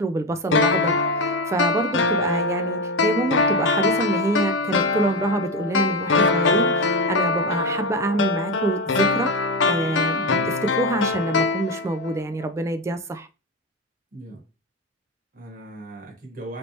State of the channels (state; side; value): normal; both; correlation 0.16